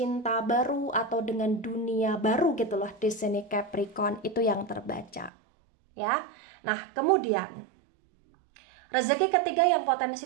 baru atau dengan dunia baru gitu loh di sini Capricorn, itu yang terbaca ya. Nah, kemudian rezeki ketiga yang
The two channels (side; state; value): left; drops out; at 5.3 s